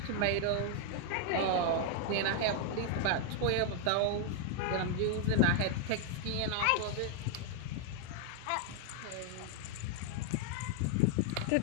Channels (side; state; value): both; different; correlation 0.00